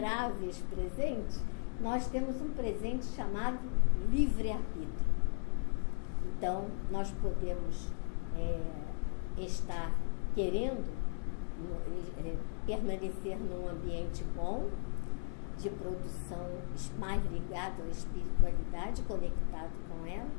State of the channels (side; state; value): right; silent; 54 dB below the other